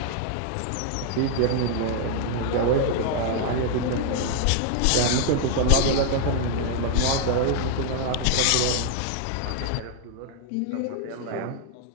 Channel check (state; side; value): different; both; correlation -0.01